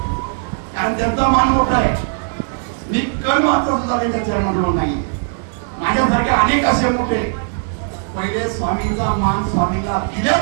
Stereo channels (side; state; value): left; silent; digital silence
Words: कारण त्यांचा मान मोठा आहे. मी कण मात्र सुद्धा त्यांच्या चरणाजवळ नाही. माझ्यासारखे अनेक असे मोठे, पहिले स्वामींचा मान स्वामींना